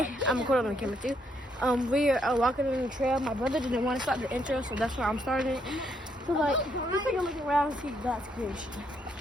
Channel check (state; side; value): normal; both; correlation 0.74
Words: I'm recording on the camera too. We are walking on the trail. My brother didn't want to start the intro, so that's why I'm starting it. So like, let's take a look around and see God's creation.